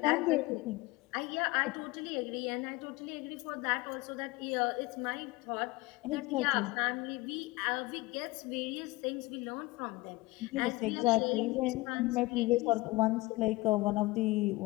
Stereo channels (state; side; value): quieter; right; 21.2 dB